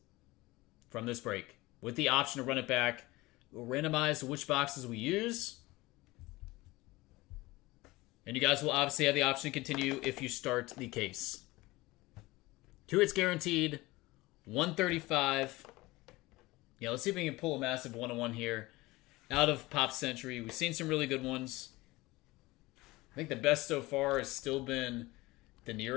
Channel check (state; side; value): quieter; right; 20.6 dB